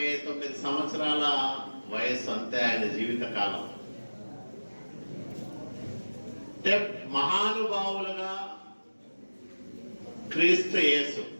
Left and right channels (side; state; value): both; inverted; correlation -1.00